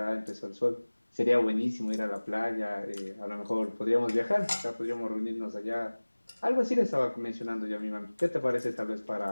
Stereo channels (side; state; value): both; inverted; correlation -1.00